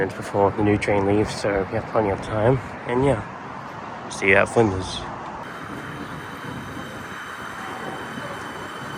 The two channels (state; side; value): identical; both; correlation 1.00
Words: before the new train leaves, so we have plenty of time. And yeah, see you at Flinders.